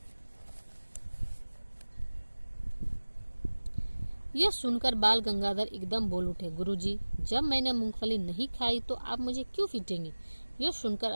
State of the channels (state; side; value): inverted; both; correlation -1.00